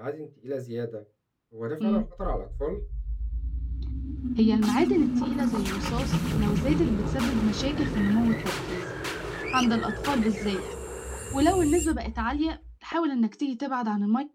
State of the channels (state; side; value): identical; both; correlation 1.00